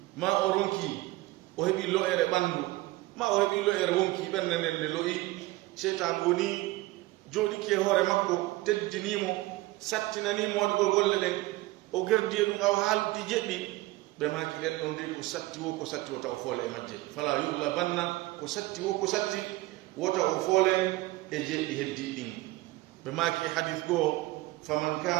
ma o ronki o heɓi lo'ere ɓanndu ma o heɓi lo'ere wonki ɓernde nden nde lo'i seytan woni jooɗiki e hoore makko teddinimo sattinanimo waɗugol golle ɗen o gerdi e ɗum aw haaldi jeɗɗi ɓe maki ɗen ɗon ndi ko satti wo taw foole e majje fala yuglabanna ko satti wo ko satti wota o foole e jeɗɗi heddi ɗin ɓe maki hadith goo faman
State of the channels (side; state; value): left; quieter; 19.3 dB